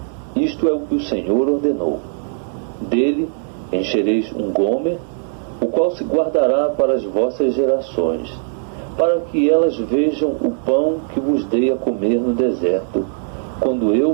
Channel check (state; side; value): silent; left; digital silence